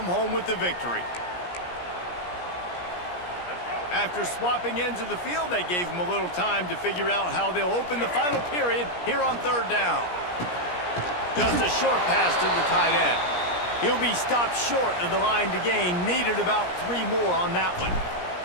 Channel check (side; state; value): right; late; 17 ms